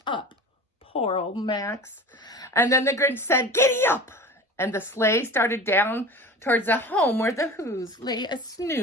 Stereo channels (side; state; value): both; normal; correlation 0.36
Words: up. Poor old Max. And then the Grinch said, giddy up! And the sleigh started down towards the home where the Whos lay a